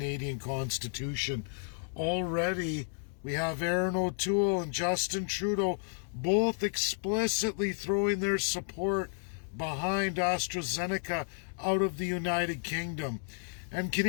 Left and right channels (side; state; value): right; silent; 56 dB below the other